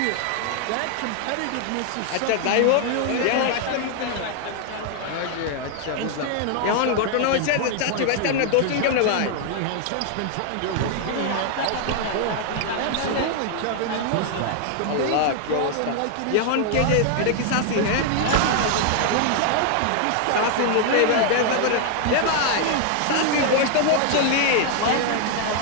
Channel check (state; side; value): different; both; correlation 0.00